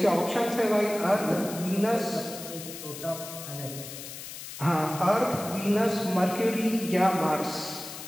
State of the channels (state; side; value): noise; left; hiss, 11 dB below the sound